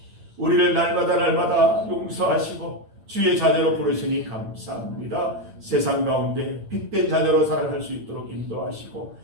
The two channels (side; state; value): left; late; 8.9 ms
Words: 우리를 날마다 용서하시고 주의 자녀로 부르시니 감사합니다. 세상 가운데 빛된 자녀로 살아갈 수 있도록 인도하시고